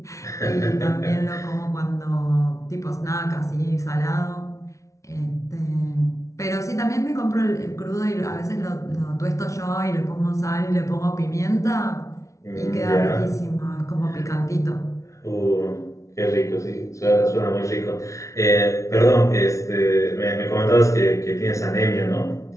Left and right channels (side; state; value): right; late; 0.15 ms